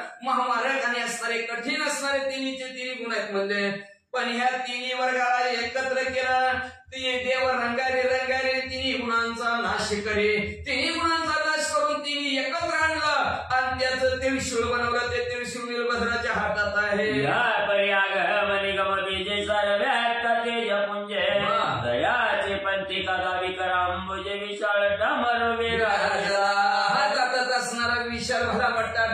महामारकाने असणारे कठीण असणारे तिन्ही गुण आहेत म्हणले. पण ह्या तिन्ही वर्गाला एकत्र केलं ते देव रंगारे तिन्ही गुणांचा नाश करे. तिन्ही गुणांचा नाश करून तिन्ही एकत्र आणलं आणि त्याचं त्रिशूळ बनवलं. ते त्रिशूळ वीरभद्राच्या हातात आहे. दयाचे पंथी कदावी करांबुजे विशाळ डमर हातात असणारा विशाल भला मोठा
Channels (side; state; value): both; identical; correlation 1.00